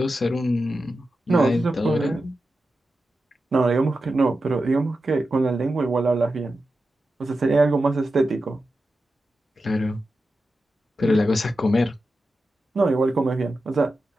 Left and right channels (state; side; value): normal; both; correlation 0.91